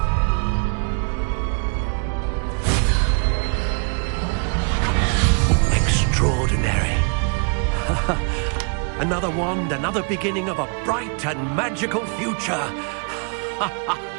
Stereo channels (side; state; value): left; quieter; 37.7 dB